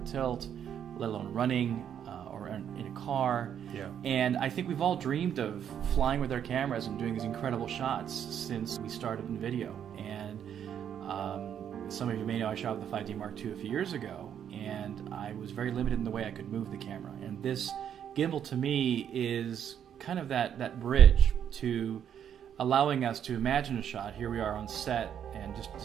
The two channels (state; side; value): quieter; left; 9.0 dB